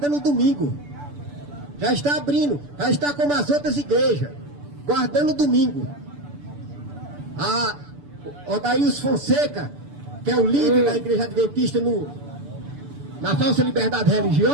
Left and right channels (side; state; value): left; late; 6.9 ms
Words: o domingo. Já está abrindo, já está como as outras igrejas, guardando o domingo. A Odaíus Fonseca que é o líder da Igreja Adventista na falsa liberdade